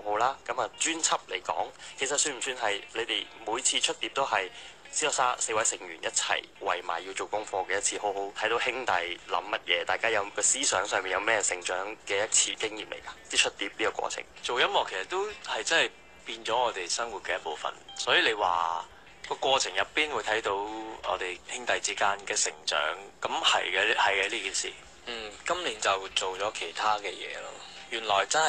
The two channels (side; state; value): both; identical; correlation 1.00